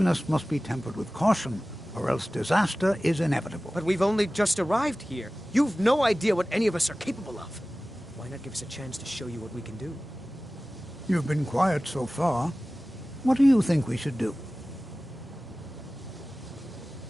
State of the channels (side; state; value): both; normal; correlation 0.97